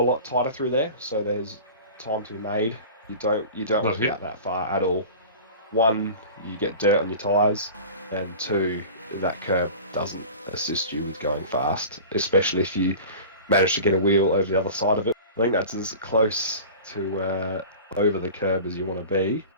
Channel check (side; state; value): both; inverted; correlation -0.38